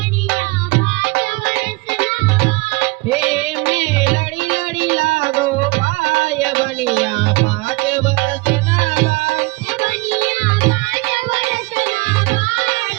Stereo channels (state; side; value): quieter; left; 25.4 dB